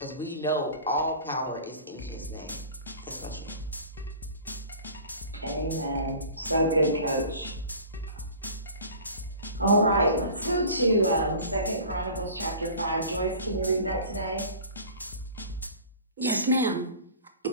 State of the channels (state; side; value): inverted; both; correlation -0.42